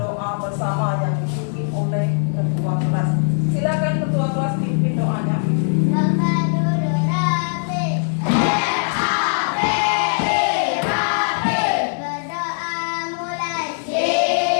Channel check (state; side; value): silent; right; digital silence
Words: bersama yang dipimpin oleh ketua kelas. Silakan ketua kelas pimpin doanya.